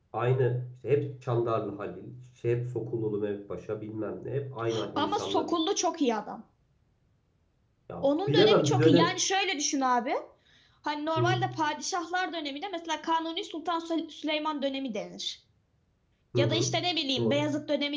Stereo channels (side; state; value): both; identical; correlation 1.00